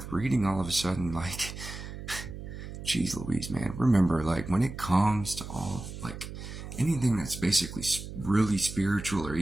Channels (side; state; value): right; noise; hum, 10 dB below the sound